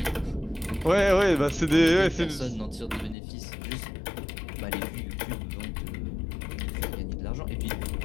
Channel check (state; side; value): drops out; right; at 3.2 s